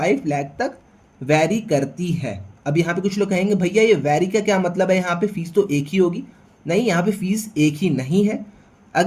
लाख तक वैरी करती है। अब यहाँ पे कुछ लोग कहेंगे भैया ये वैरी का क्या मतलब है, यहाँ पे फीस तो एक ही होगी। नहीं, यहाँ पे फीस एक ही नहीं है।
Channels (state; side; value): identical; both; correlation 1.00